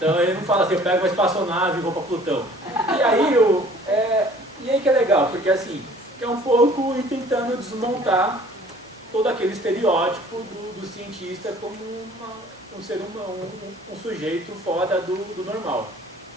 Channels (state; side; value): normal; both; correlation 0.52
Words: ele não fala assim, eu pego uma espaçonave e vou para Plutão. E aí que é legal, porque assim, é um pouco ir tentando desmontar todo aquele estereótipo do cientista como um ser humano, um sujeito fora do normal.